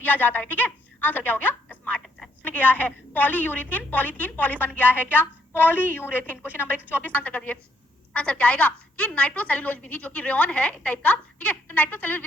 जाता है। ठीक है, आंसर क्या हो गया? Smart textile. गया है पॉलीयूरेथीन, पॉलीथीन, पॉली बन गया है क्या? पॉलीयूरेथीन। क्वेश्चन नंबर 124 आंसर कर दिए। आंसर क्या आएगा? कि नाइट्रोसेल्यूलोज विधि, जो कि रेयन है एक टाइप का, ठीक है, तो नाइट्रोसेल्यूलोज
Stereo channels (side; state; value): both; normal; correlation 0.74